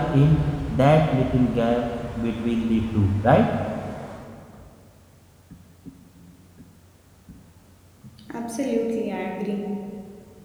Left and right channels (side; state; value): both; identical; correlation 1.00